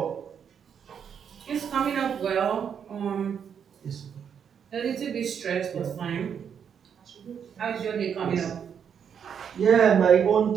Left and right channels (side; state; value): left; quieter; 7.7 dB